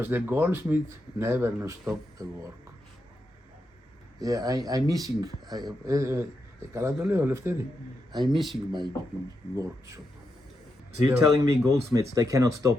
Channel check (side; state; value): both; normal; correlation 0.85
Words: the goldsmith never no stop the work. Yeah, I'm missing. I'm missing my workshop. So you're telling me goldsmiths, they cannot